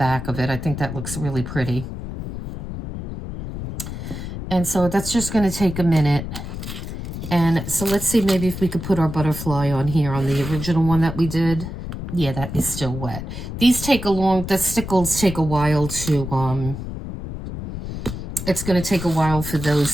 of it. I think that looks really pretty. And so that's just going to take a minute. And so let's see maybe if we could put our butterfly on here on the original one that we did. Yeah, that is still wet. These take the stickles take a while to, it's going to take a while for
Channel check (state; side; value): noise; left; rumble, 8 dB below the sound